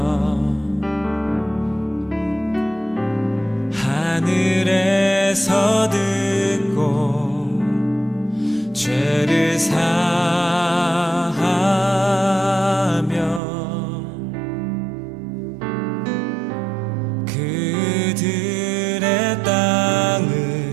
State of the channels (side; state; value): left; drops out; at 13.4 s